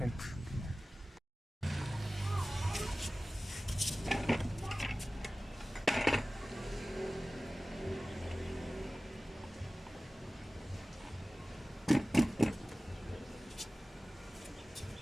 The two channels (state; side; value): normal; both; correlation 0.97